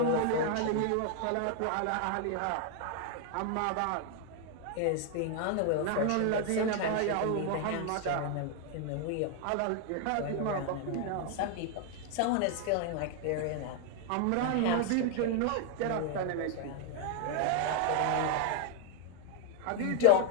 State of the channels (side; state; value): both; different; correlation 0.00